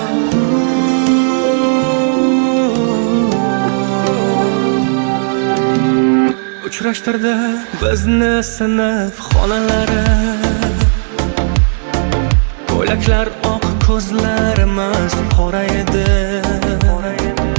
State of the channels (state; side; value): silent; left; digital silence